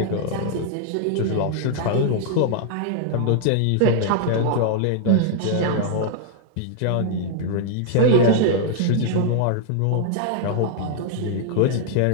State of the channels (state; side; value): different; both; correlation 0.00